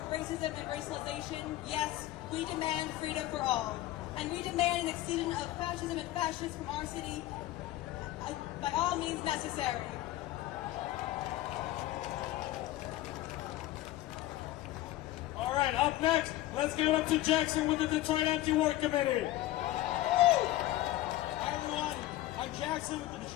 racism and racialization. Yes, we demand freedom for all. And we demand an extinction of fascism and fascists from our city by all means necessary. All right, up next, let's give it up to Jackson with the Detroit Anti-War Committee. Hi everyone, I'm Jackson with the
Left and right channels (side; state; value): right; quieter; 15.6 dB